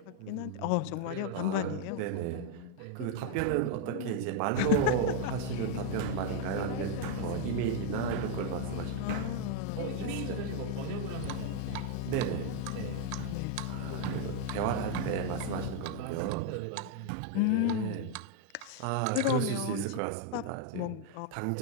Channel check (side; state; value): both; different; correlation 0.01